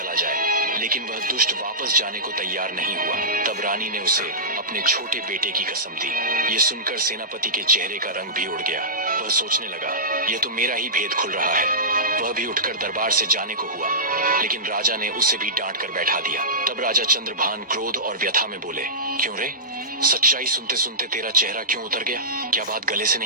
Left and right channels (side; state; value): both; normal; correlation -0.19